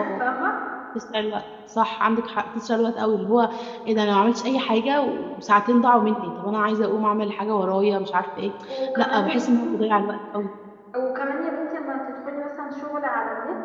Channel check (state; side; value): identical; both; correlation 1.00